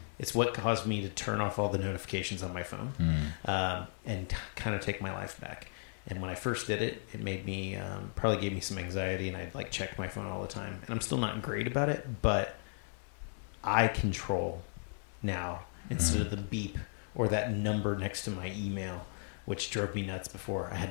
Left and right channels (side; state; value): right; silent; digital silence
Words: what caused me to turn off all the notifications on my phone, and kind of take my life back. And when I first did it, it made me, probably gave me some anxiety, and I'd like check my phone all the time. And I'm still not great about it, but I control now instead of the beep or that number next to my email, which drove me nuts before. I had